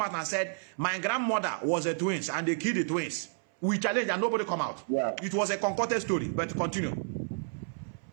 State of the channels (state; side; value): silent; left; 57 dB below the other